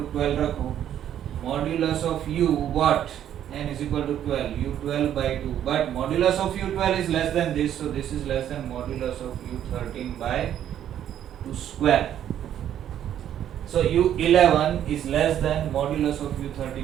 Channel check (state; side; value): quieter; left; 10.5 dB